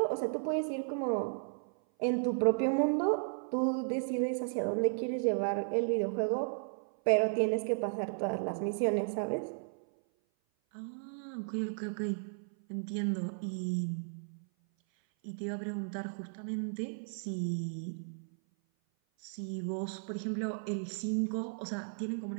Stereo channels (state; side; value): silent; left; 55 dB below the other